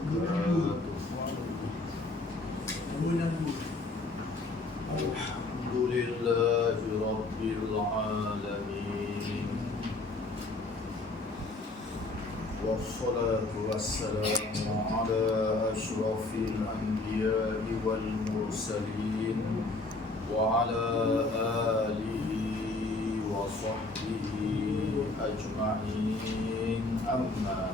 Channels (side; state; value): right; quieter; 3.2 dB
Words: Alhamdulillahi rabbil alamin. Wassalatu wassalamu ala asyrafil anbiya'i wal mursalin wa ala alihi wa sahbihi ajma'in, amma